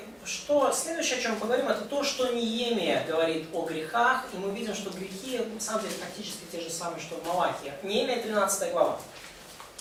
что следующее, о чем мы поговорим, это то, что Неемия говорит о грехах, и мы видим, что грехи, на самом деле, практически те же самые, что в Малахии. Неемия 13 глава.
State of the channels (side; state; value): both; identical; correlation 1.00